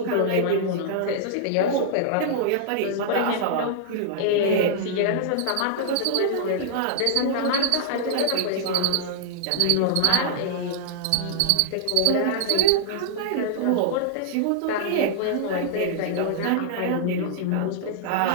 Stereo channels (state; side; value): different; both; correlation -0.01